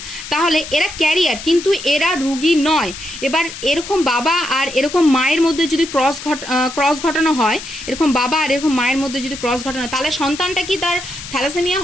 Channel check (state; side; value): noise; left; hiss, 11 dB below the sound